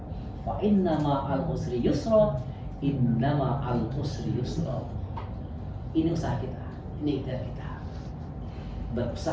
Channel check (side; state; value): both; identical; correlation 1.00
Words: Fa innama al usri yusra, innama al usri yusra. Ini usaha kita, ini ikhtiar kita.